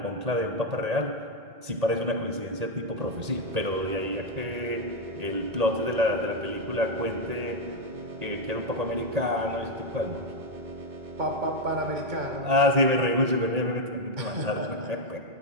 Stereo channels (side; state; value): left; late; 1.8 ms